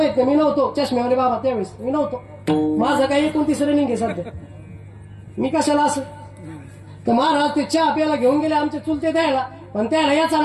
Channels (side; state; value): both; identical; correlation 1.00